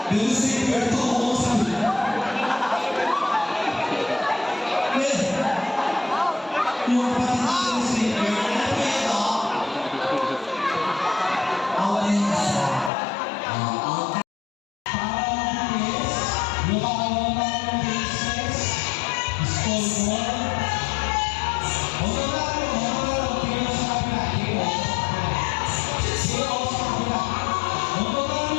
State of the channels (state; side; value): drops out; right; at 12.9 s